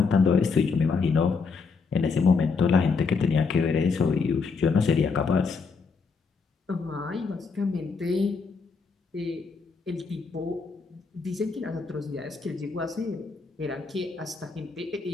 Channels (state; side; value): quieter; right; 4.9 dB